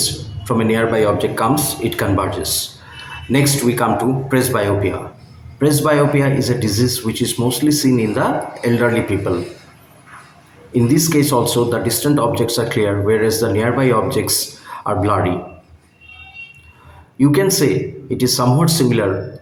from a nearby object comes, it converges. Next we come to presbyopia. Presbyopia is a disease which is mostly seen in the elderly people. In this case also, the distant objects are clear, whereas the nearby objects are blurry. You can say it is somewhat similar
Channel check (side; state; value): both; identical; correlation 1.00